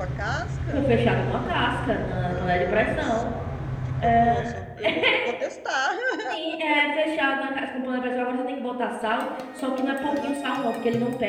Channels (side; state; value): both; identical; correlation 1.00